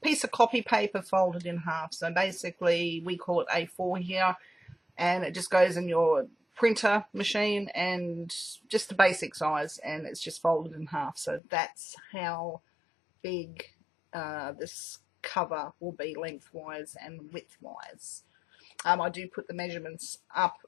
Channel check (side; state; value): right; drops out; at 11.4 s